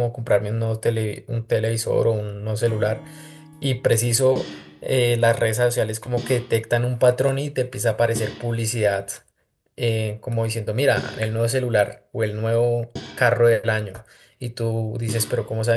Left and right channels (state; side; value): identical; both; correlation 1.00